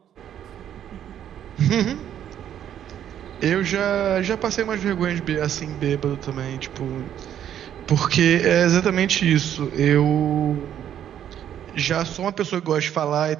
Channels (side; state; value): left; quieter; 10.2 dB